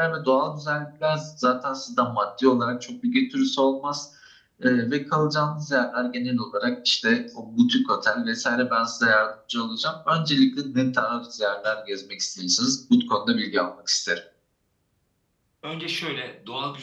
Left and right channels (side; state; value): both; identical; correlation 1.00